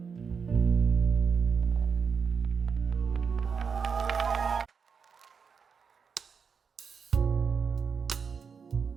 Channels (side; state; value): left; quieter; 6.0 dB